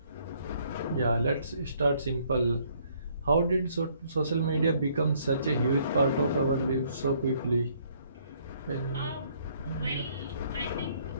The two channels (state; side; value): inverted; both; correlation -0.65